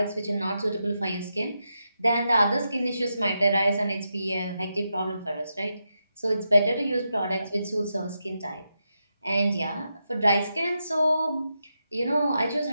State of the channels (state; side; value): inverted; both; correlation -0.86